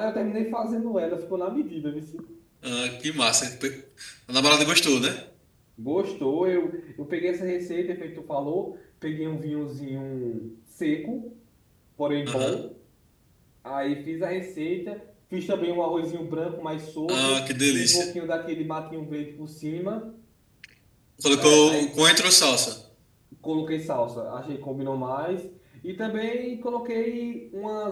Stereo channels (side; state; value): both; identical; correlation 1.00